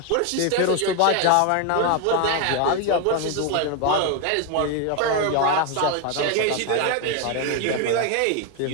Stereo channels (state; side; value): different; both; correlation 0.01